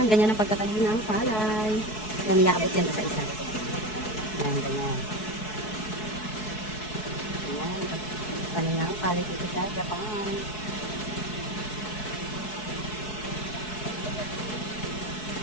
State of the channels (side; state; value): right; late; 4.7 ms